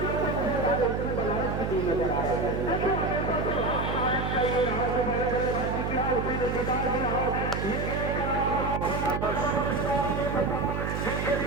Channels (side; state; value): right; noise; hum, 2 dB below the sound